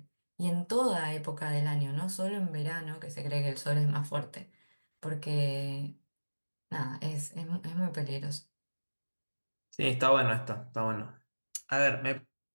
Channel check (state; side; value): inverted; both; correlation -1.00